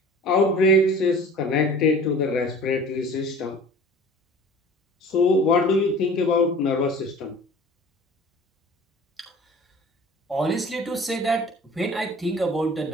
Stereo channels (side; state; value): both; normal; correlation 0.44